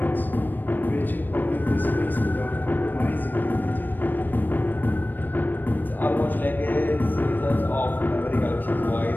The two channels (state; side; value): late; right; 0.091 ms